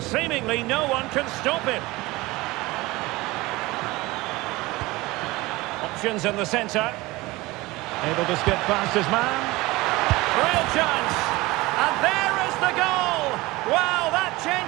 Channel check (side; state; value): left; quieter; 20.8 dB